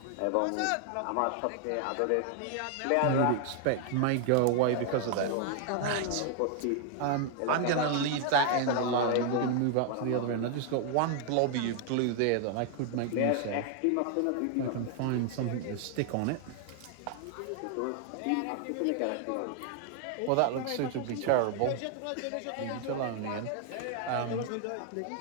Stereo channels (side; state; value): both; different; correlation 0.00